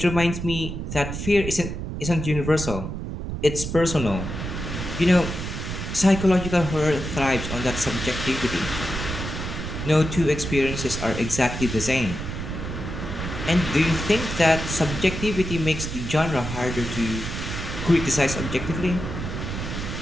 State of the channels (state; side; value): noise; right; rumble, 5 dB below the sound